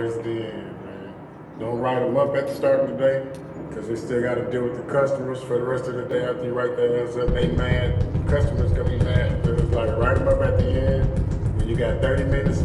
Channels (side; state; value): both; identical; correlation 1.00